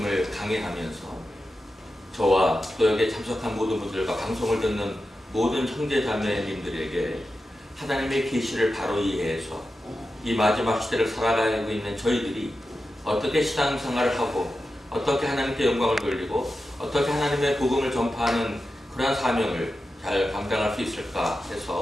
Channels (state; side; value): normal; both; correlation 0.91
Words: 강의하면서 저와 또 여기에 참석한 모든 분들과 방송을 듣는 모든 형제자매님들에게 하나님의 계시를 바로 이해해서 이 마지막 시대를 살아가고 있는 저희들이 어떻게 신앙생활을 하고 어떻게 하나님께 영광을 돌리고 어떻게 하나님의 복음을 전파하는 그러한 사명을 잘 감당할 수 있을까